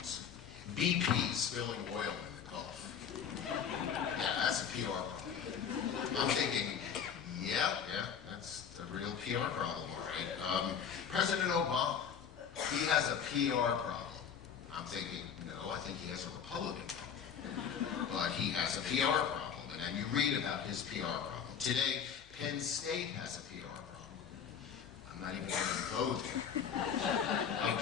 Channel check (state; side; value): quieter; right; 7.6 dB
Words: BP spilling oil in the Gulf. Yeah, that's a PR problem. I'm thinking, yeah, that's a real PR problem, all right. President Obama, he has a PR problem. I'm thinking, no, I think he has a Republican problem. But he has a PR problem, and then you read about his PR problem. Today, Penn State has a PR problem. I'm not even going to go there.